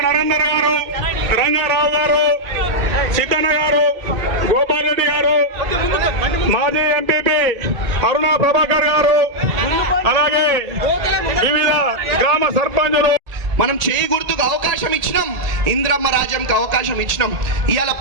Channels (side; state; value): left; late; 1.8 ms